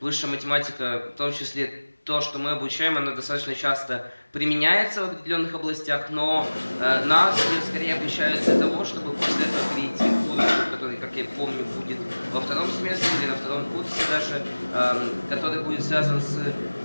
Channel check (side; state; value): both; inverted; correlation -1.00